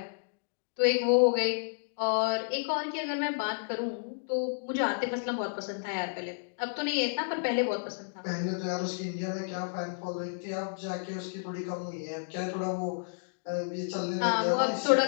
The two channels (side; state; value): right; silent; digital silence